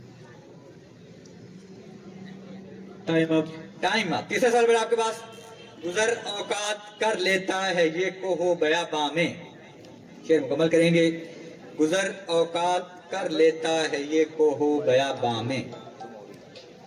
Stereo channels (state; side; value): identical; both; correlation 1.00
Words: Time up. Time up. तीसरा सवाल बेटा आपके पास, गुजर औकात कर लेता है ये कोहो बयाबा में, शेर मुकम्मल करेंगे। गुजर औकात कर लेता है ये कोहो बयाबा में।